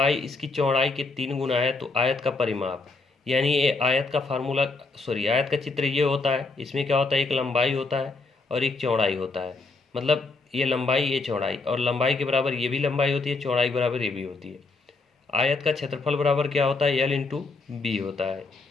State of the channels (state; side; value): quieter; right; 3.7 dB